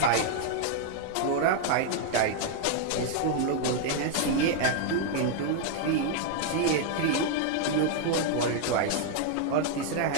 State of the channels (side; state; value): both; different; correlation 0.00